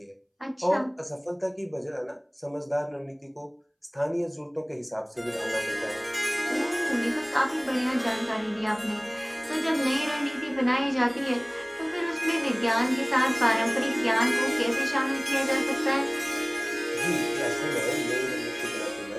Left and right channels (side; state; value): both; identical; correlation 1.00